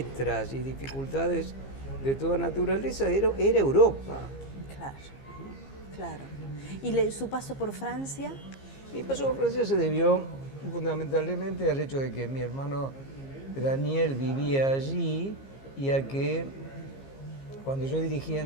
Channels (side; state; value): right; late; 15 ms